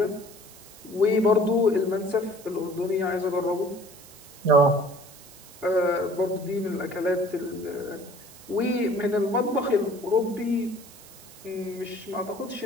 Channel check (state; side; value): noise; right; hiss, 20 dB below the sound